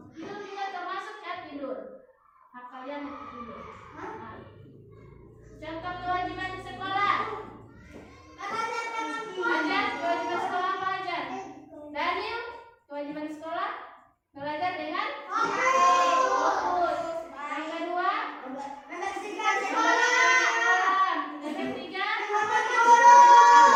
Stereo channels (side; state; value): both; identical; correlation 1.00